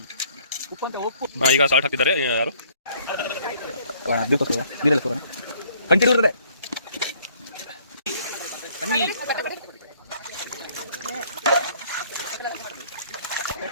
ಈಗ ಸಾಲ್ಟ್ ಹಾಕ್ತಿದ್ದಾರೆ ಯಾರು. ಕಂಟಿನ್ಯೂ ಇರ್ತದೆ.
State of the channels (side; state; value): both; inverted; correlation -0.60